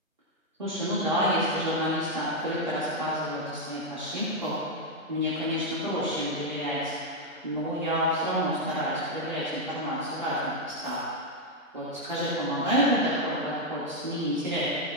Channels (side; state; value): both; normal; correlation 0.01